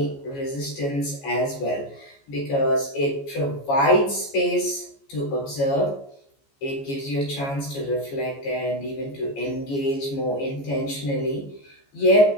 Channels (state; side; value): late; right; 14 ms